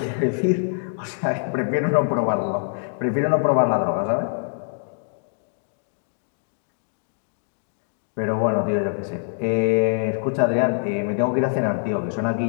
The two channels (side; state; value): right; silent; digital silence